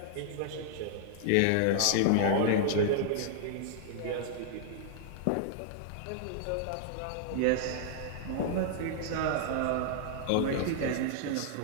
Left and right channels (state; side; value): different; both; correlation -0.01